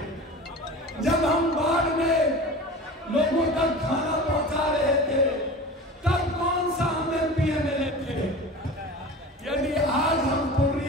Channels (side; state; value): both; normal; correlation 0.35